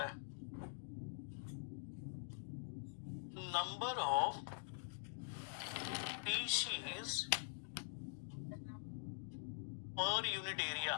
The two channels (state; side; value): silent; right; digital silence